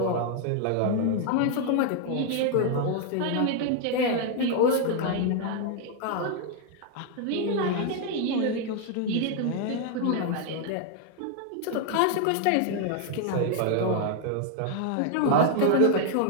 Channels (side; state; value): both; different; correlation 0.00